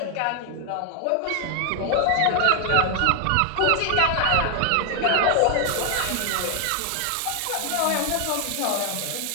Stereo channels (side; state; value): both; different; correlation 0.00